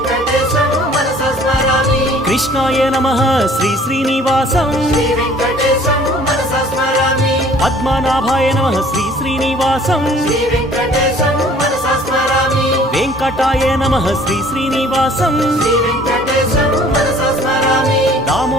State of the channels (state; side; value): normal; both; correlation 0.53